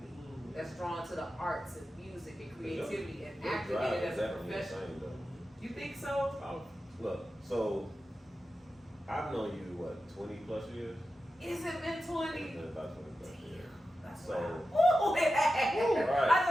me that's drawn to the arts and music and creativity and acting in it as a profession. You think so? Look, so I've known you, what, 20 plus years? Is it been 20? It's been about 20 plus years. That's So- wow. Ooh, right. I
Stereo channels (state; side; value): normal; both; correlation 0.91